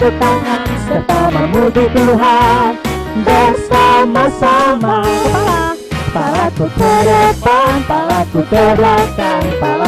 tangan serta memuji Tuhan. Bersama-sama kepalaku ke depan, kepalaku ke belakang,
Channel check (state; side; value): identical; both; correlation 1.00